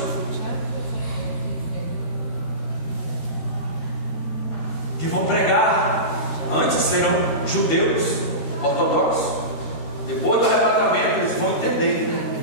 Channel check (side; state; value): right; late; 13 ms